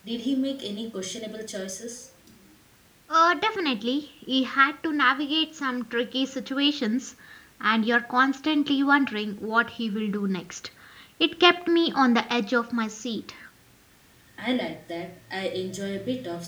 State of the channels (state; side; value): identical; both; correlation 1.00